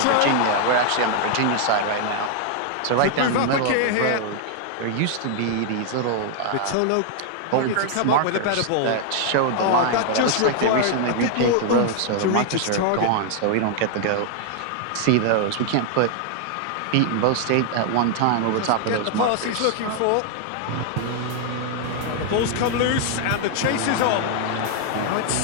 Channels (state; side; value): different; both; correlation 0.00